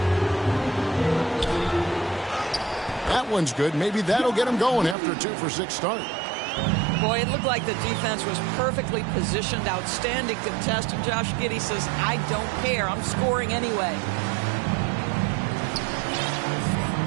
That one's good. Maybe that'll get him going after a 2-for-6 start. Boy, it looked like the defense was perfectly positioned. Outstanding contest. And Josh Giddey says, I don't care. I'm scoring anyway.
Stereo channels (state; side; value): drops out; left; at 5.0 s